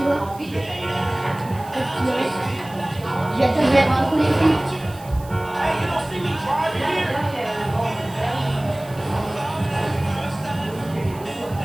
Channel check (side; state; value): right; noise; hiss, 22 dB below the sound